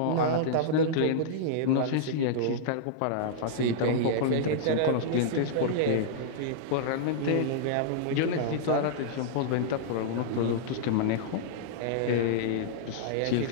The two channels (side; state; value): both; different; correlation -0.02